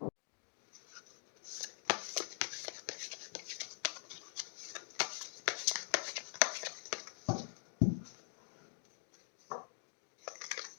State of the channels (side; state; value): right; silent; digital silence